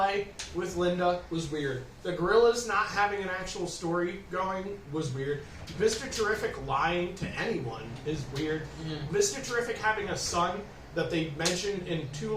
with Linda was weird. The gorillas not having an actual story going was weird. Mr. Terrific lying to anyone is weird. Mr. Terrific having a son that they mentioned in 2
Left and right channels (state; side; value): identical; both; correlation 1.00